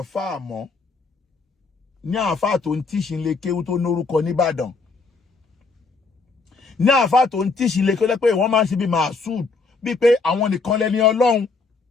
àáfàá mọ́ ní àáfàá tó ń tíṣì lè kéwú tó lórúkọ nìbàdàn ní àáfàá tó ń tíṣì lè kéwú pé wọ́n máa ń ṣe bí màásùd bíi pé àwọn nìkan lẹ́ni ọlọ́run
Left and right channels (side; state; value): right; quieter; 4.2 dB